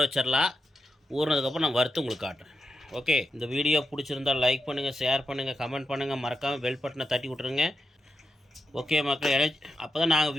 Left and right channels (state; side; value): normal; both; correlation 0.87